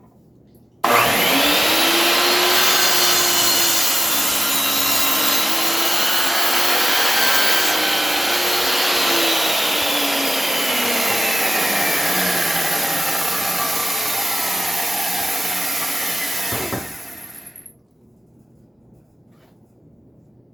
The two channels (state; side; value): normal; both; correlation 0.96